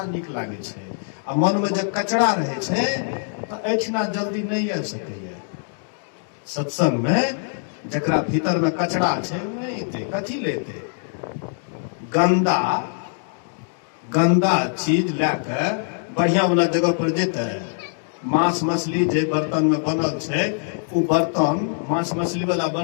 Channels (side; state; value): right; silent; digital silence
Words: नीक लागे छै। आ मन में जब कचरा रहे छै तो एठिना जल्दी नहीं आ सकैया। सत्संग में जकरा भीतर में कचरा छै नहीं थे, कथी लेते? गंदा गंदा चीज लेके बढ़िया वाला जगह पर जेते। मांस मछली जे बर्तन में बनल छै, वो बर्तन मांस मछली वाला